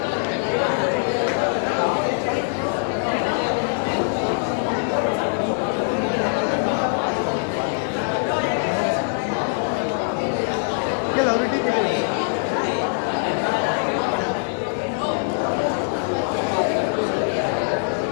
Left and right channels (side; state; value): right; silent; digital silence